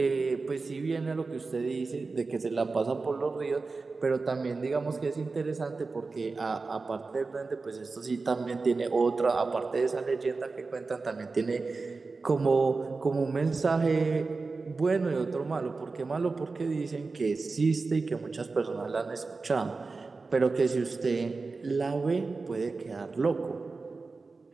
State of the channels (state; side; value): quieter; left; 4.0 dB